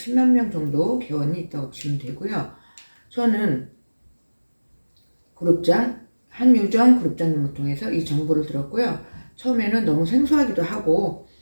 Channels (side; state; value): both; inverted; correlation -1.00